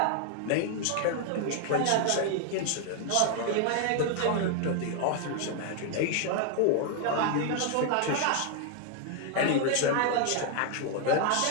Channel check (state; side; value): different; both; correlation 0.00